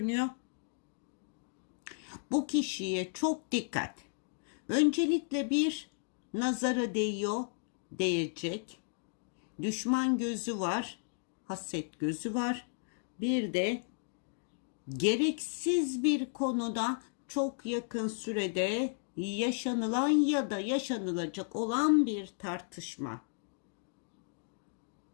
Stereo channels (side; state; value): right; silent; digital silence